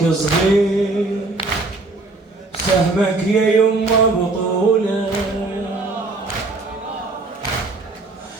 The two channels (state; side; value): quieter; left; 3.3 dB